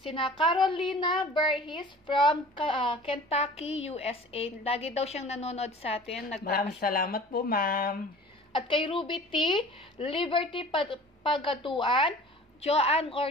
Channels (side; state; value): both; normal; correlation 0.44